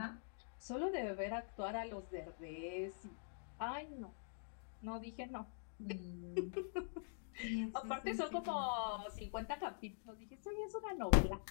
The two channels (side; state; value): right; silent; digital silence